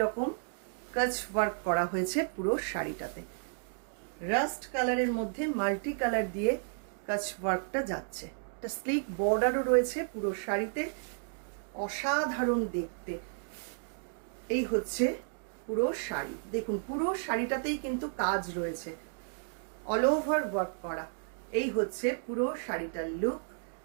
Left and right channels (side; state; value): left; silent; digital silence